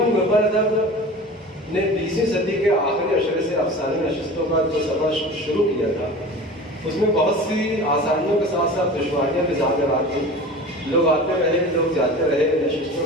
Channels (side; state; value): both; normal; correlation 0.37